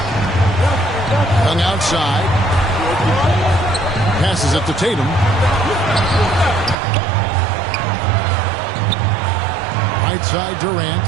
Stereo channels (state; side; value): drops out; left; at 6.8 s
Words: Young outside. Passes it to Tatum. Right side Durant.